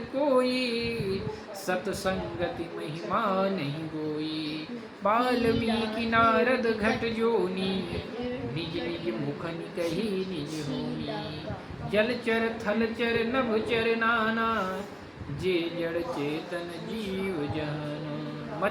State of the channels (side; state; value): both; identical; correlation 1.00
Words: कोई, सतसंगति महिमा नहीं गोई। वाल्मीकि नारद घट जोनी, निज निज मुख निकहि निज होनी। जलचर थलचर नभचर नाना, जे जड़ चेतन जीव जहाना।